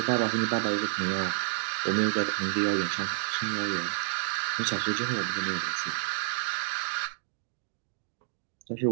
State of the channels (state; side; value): silent; left; digital silence